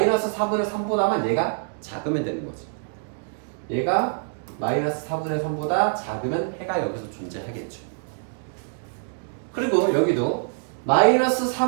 4분의 3보다만 얘가 작으면 되는 거지. 얘가 마이너스 4분의 3보다 작으면 해가 여기서 존재하겠죠. 그리고 여기도 마이너스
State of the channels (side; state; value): left; silent; digital silence